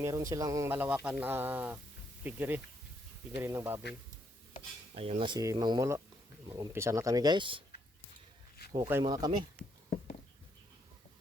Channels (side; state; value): both; normal; correlation 0.74